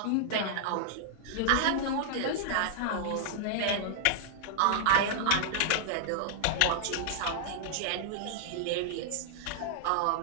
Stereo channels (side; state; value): both; different; correlation -0.01